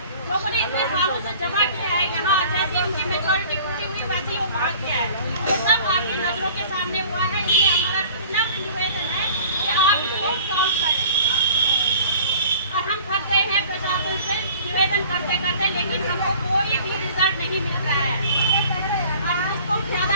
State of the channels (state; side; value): inverted; both; correlation -0.48